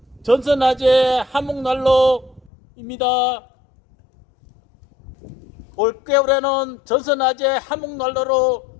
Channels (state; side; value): drops out; right; at 2.5 s